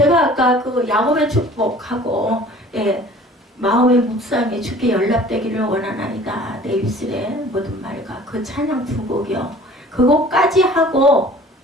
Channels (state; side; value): normal; both; correlation 0.48